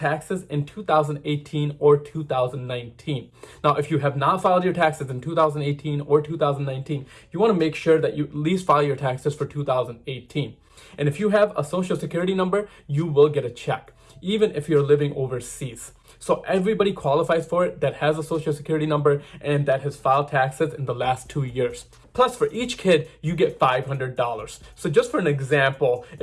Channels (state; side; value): identical; both; correlation 1.00